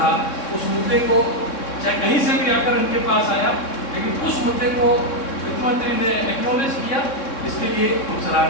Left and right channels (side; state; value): right; late; 3.6 ms